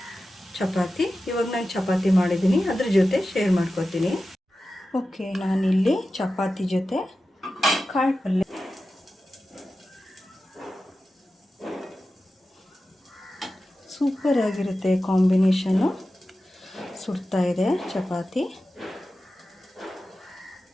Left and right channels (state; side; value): normal; both; correlation 0.93